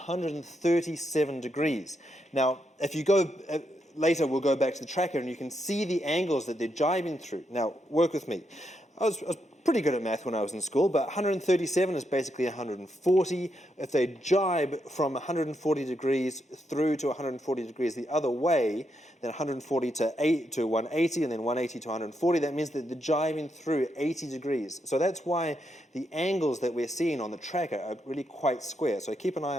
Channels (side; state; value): both; normal; correlation 0.81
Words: degrees. Now, if you go later, we'll go back to the tracker, and you can see the angles that they're jibing through. Now, work with me. I was pretty good at math when I was in school, but 137 is basically 140. If they jibe from 140 degrees through to 140 degrees the other way, then 140 to 180, and then 180 to 140, that means that they're jibing through 80 degrees. So that's why the angles that we're seeing on the tracker are really quite square. So keep an eye